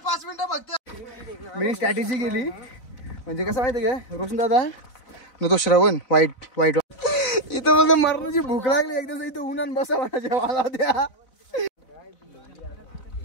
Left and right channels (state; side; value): late; right; 4.0 ms